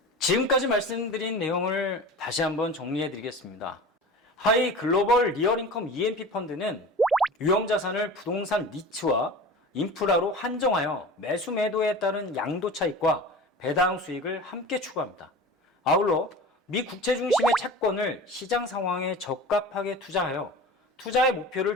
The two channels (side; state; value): both; normal; correlation 0.35